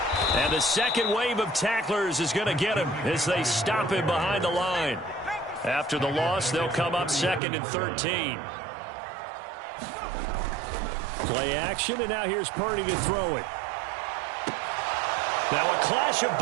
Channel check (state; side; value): drops out; left; at 7.4 s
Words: And the second wave of tacklers is going to get him as they stop him behind the line. After the loss, they'll come up 2nd and 13. Play action, and now here's Purdy to throw it. Now a clash of